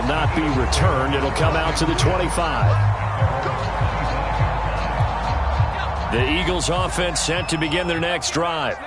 not be returned. It'll come out to the 25. The Eagles offense set to begin their next drive.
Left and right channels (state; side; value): identical; both; correlation 1.00